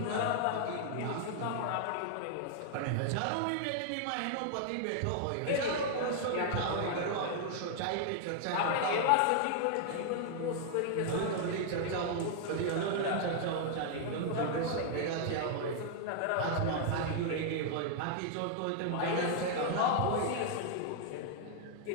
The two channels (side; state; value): both; different; correlation 0.00